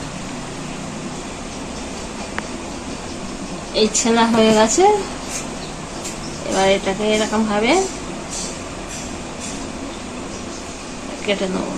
এই ছেনা হয়ে গেছে, এবার এটাকে এরকম ভাবে কেটে নেব।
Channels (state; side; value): identical; both; correlation 1.00